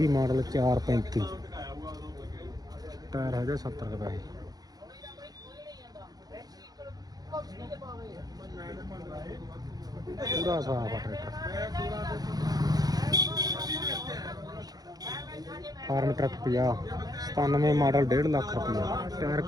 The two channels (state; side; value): late; left; 0.19 ms